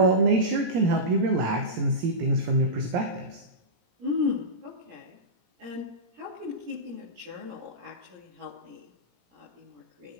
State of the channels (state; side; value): late; left; 17 ms